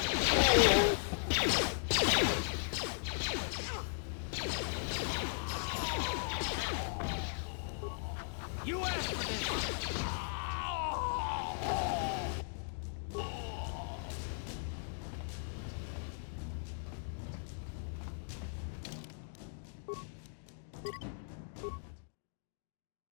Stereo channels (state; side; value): silent; right; digital silence